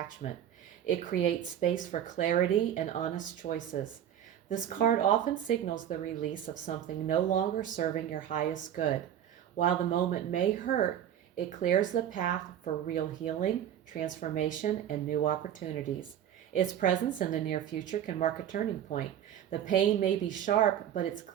It creates space for clarity and honest choices. This card often signals the release of something no longer serving your highest good. While the moment may hurt, it clears the path for real healing, transformation, and new opportunities. Its presence in the near future can mark a turning point. The pain may be sharp, but it's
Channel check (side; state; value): left; quieter; 10.3 dB